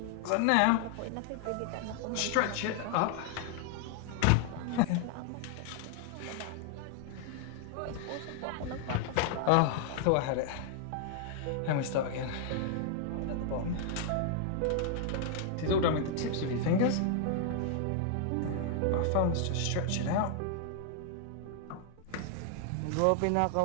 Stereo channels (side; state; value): both; different; correlation 0.00